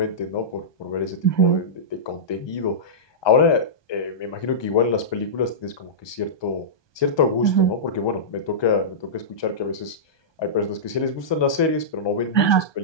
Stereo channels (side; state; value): right; late; 1.2 ms